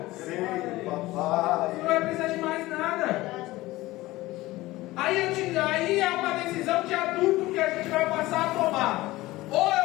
Sim, papai. Você não vai precisar de mais nada. Aí é uma decisão de adulto que a gente vai passar a tomar. Ou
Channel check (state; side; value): quieter; right; 18.5 dB